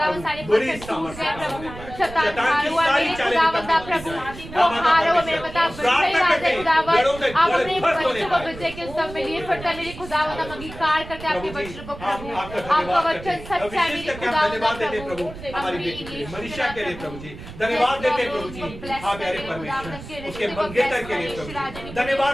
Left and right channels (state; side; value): noise; right; rumble, 14 dB below the sound